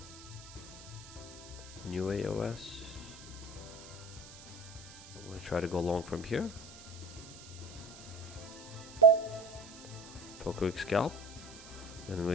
New AOS. I'm going to try to go long from here. For a quick scalp. And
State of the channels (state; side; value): noise; right; hiss, 17 dB below the sound